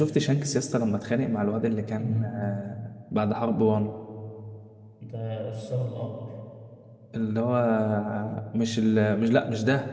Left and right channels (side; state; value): both; identical; correlation 1.00